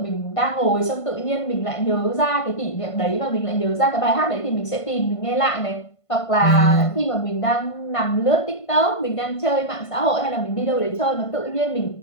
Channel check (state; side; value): late; right; 1.5 ms